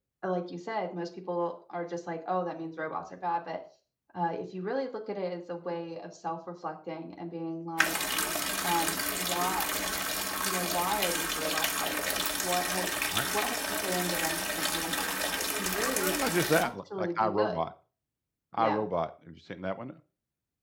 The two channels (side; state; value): both; identical; correlation 1.00